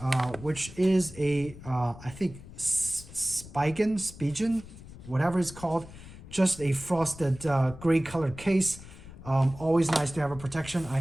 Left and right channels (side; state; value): left; noise; rumble, 16 dB below the sound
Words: which is a, I think, Spigen, whatever it's called, just a frosted gray colored case. Always nice to have a protection. I